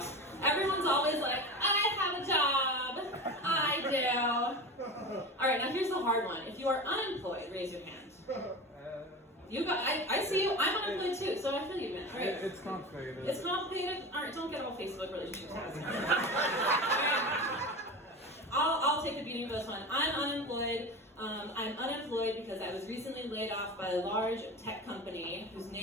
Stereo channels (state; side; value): normal; both; correlation 0.28